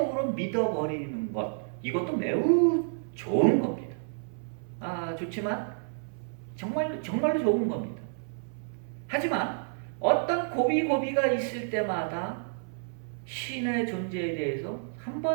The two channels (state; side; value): silent; left; 57 dB below the other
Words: 믿어버리는 것, 이것도 매우 좋은 겁니다. 좋지만 정말로 좋은 겁니다. 하지만 어떤 고비가 있을 때마다 신의 존재에 대해서